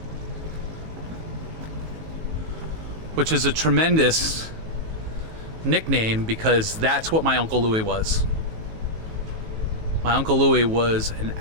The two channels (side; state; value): left; late; 19 ms